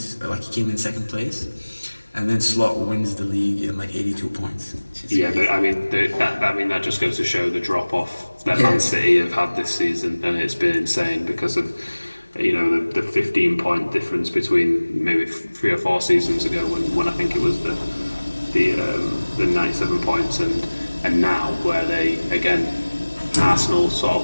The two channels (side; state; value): both; inverted; correlation -1.00